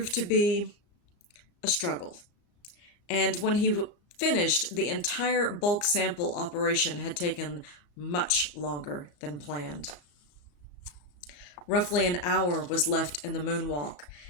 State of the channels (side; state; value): right; late; 34 ms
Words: to be a struggle. And when he finished, the entire bulk sample operation had taken much longer than planned. Roughly an hour was left in the moonwalk,